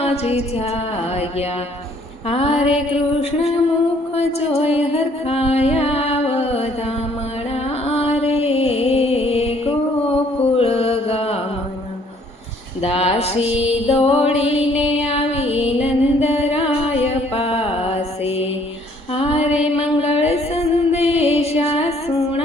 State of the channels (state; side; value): normal; both; correlation 0.62